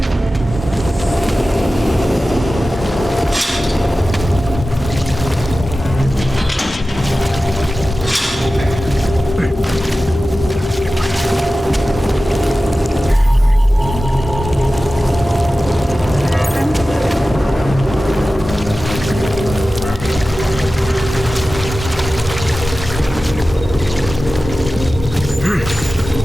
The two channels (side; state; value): both; normal; correlation 0.95